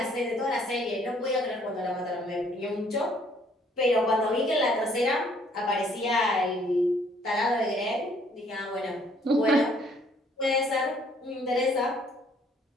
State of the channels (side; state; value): both; normal; correlation 0.63